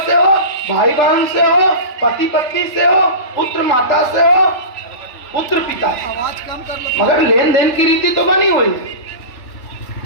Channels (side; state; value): right; late; 3.4 ms